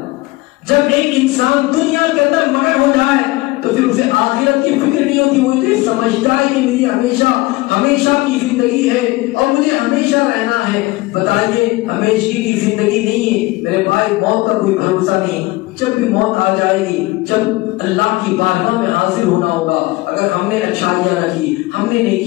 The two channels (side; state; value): right; quieter; 20.9 dB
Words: جب ایک انسان دنیا کے اندر مگن ہو جائے تو پھر اسے آخرت کی فکر نہیں ہوتی، وہ تو سمجھتا ہے کہ میری ہمیشہ کی زندگی ہے اور مجھے ہمیشہ رہنا ہے۔ بتائیے ہمیشہ کی زندگی نہیں ہے میرے بھائی، موت کا کوئی بھروسہ نہیں۔ جب بھی موت آ جائے گی، جب اللہ کی بارگاہ میں حاضر ہونا ہوگا، اگر ہم نے اچھائیاں نہ کی، ہم نے